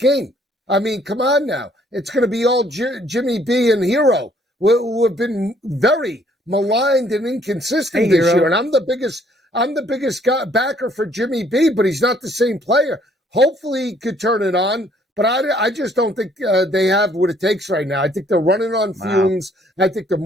I mean, come on now. It's going to be all Jimmy B and Hero, who have been very maligned and inconsistent this year. And I'm the biggest backer for Jimmy B, but he's not the same player. Hopefully he could turn it on, but I just don't think they have what it takes right now. I think they're running on fumes. I think the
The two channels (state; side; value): normal; both; correlation 0.64